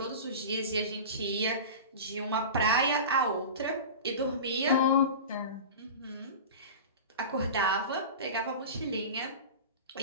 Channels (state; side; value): inverted; both; correlation -0.31